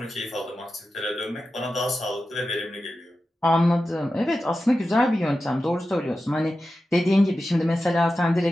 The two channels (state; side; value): normal; both; correlation 0.92